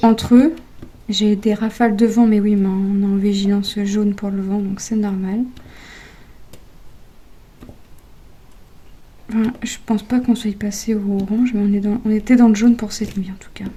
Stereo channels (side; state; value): both; identical; correlation 1.00